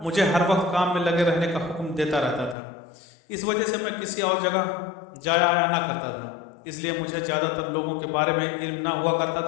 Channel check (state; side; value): drops out; right; at 2.6 s